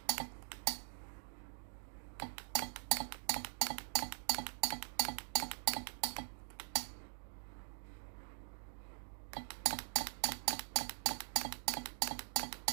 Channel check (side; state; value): left; silent; digital silence